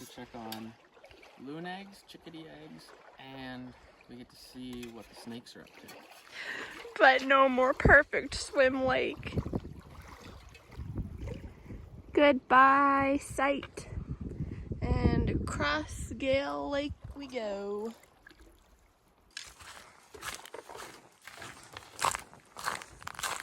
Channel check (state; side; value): identical; both; correlation 1.00